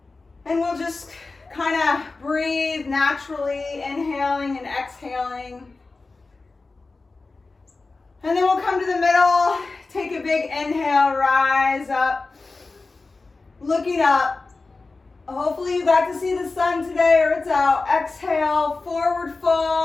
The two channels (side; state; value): right; quieter; 3.7 dB